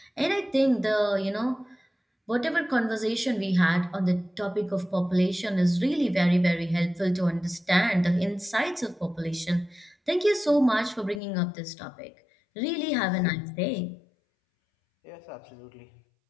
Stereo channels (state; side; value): drops out; right; at 11.2 s